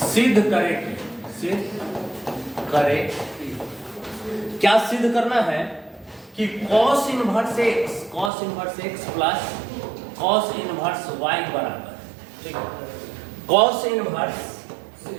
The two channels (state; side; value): drops out; left; at 8.3 s